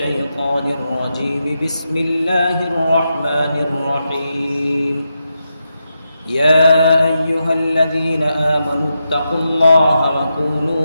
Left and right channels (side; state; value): both; inverted; correlation -0.87